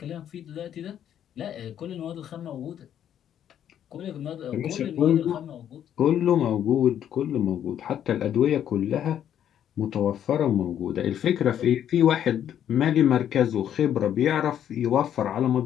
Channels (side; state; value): right; quieter; 10.0 dB